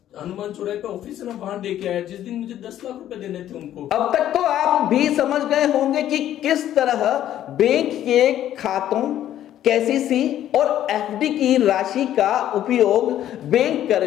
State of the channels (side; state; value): right; quieter; 11.8 dB